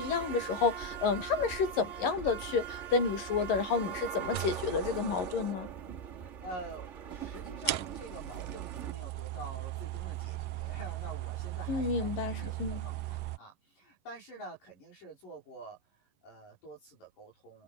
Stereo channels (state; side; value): late; right; 11 ms